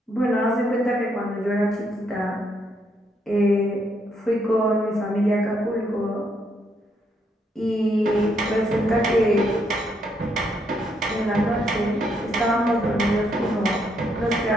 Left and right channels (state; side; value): normal; both; correlation 0.74